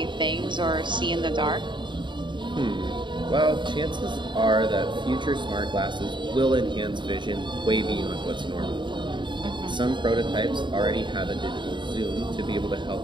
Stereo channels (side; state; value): left; late; 0.23 ms